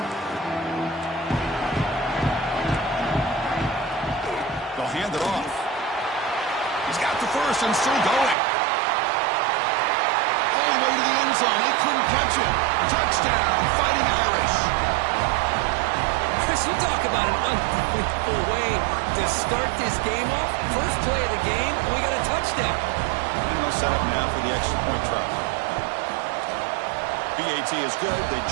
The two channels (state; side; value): drops out; left; at 8.3 s